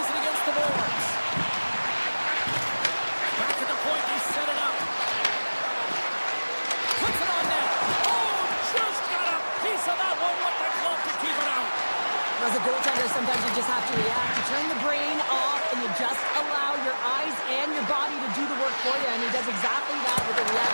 it against the boards. Back at the point, they set it up. Puts it on net. Oh, just got a piece of that one with the glove to keep it out. As a goaltender, sometimes you just have to react. You turn the brain off, and you just allow your eyes and your body to do the work for you, and he does exactly that with a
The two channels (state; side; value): inverted; both; correlation -1.00